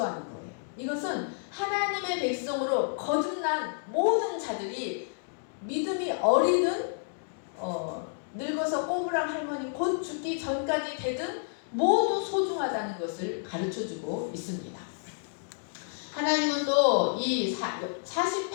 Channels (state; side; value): silent; right; digital silence